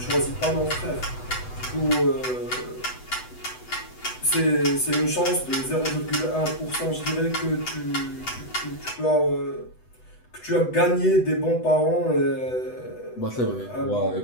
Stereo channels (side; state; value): right; late; 8.0 ms